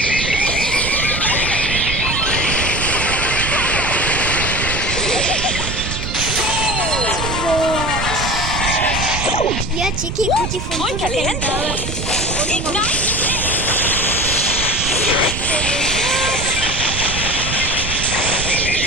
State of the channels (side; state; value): right; noise; rumble, 5 dB below the sound